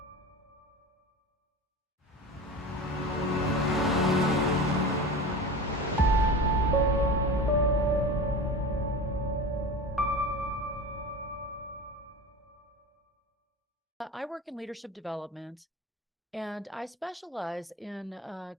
I work in leadership development, and I specialize in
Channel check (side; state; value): both; normal; correlation 0.31